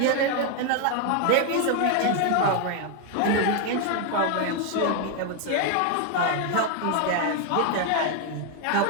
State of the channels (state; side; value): different; both; correlation 0.01